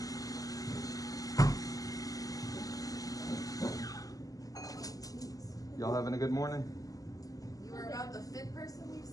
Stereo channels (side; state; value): right; late; 0.17 ms